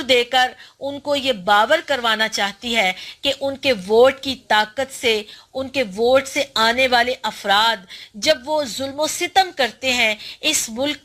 دے کر ان کو یہ باور کروانا چاہتی ہے کہ ان کے ووٹ کی طاقت سے، ان کے ووٹ سے آنے والے افراد جب وہ ظلم و ستم کرتے ہیں، اس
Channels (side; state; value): both; identical; correlation 1.00